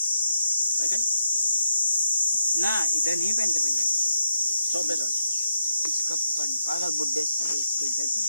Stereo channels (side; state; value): both; inverted; correlation -0.83